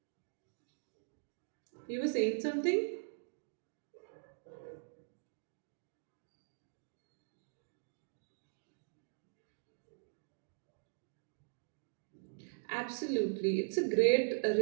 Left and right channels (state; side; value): silent; left; digital silence